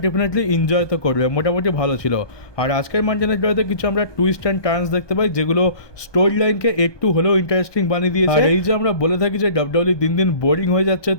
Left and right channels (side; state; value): right; late; 1.2 ms